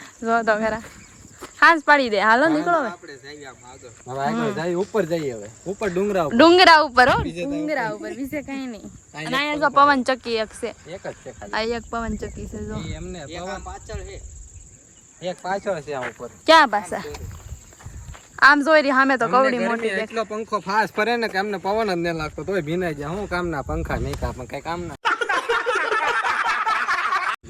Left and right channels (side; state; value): both; identical; correlation 1.00